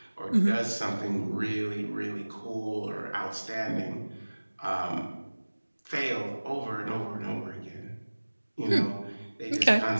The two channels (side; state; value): both; inverted; correlation -1.00